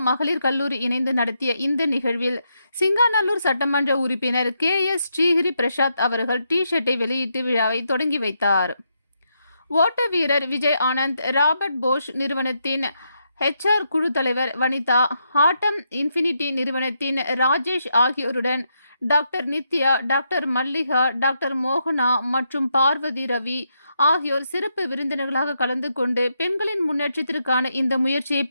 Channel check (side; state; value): both; inverted; correlation -0.80